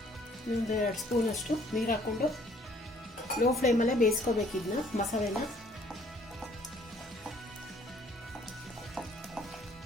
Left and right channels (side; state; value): both; normal; correlation 0.60